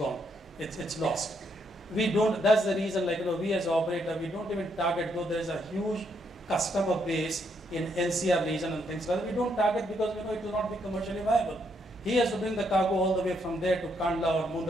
It's lost. We don't, that's the reason, we as operator, we don't even target, though there is a huge customer base in NCR region and things like that. We don't target because we know it will not be commercially viable. He has to bring the cargo all the way from there to Kandla or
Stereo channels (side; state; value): both; normal; correlation 0.75